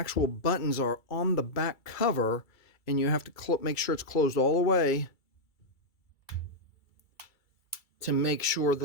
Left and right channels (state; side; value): late; right; 2.3 ms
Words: buttons are on the back cover, and you have to make sure it's closed all the way to make sure